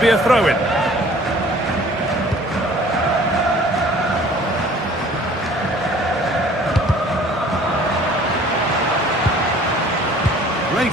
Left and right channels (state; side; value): normal; both; correlation 0.52